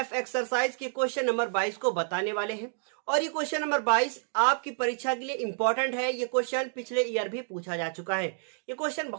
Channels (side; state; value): left; silent; digital silence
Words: एक्सरसाइज के क्वेश्चन नंबर 22 को बताने वाले हैं। और ये क्वेश्चन नंबर 22 आपकी परीक्षा के लिए इंपॉर्टेंट है। ये क्वेश्चन पिछले ईयर भी पूछा जा चुका है। ये क्वेश्चन